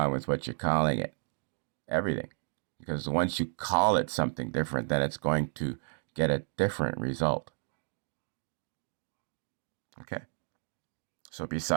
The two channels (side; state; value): left; silent; digital silence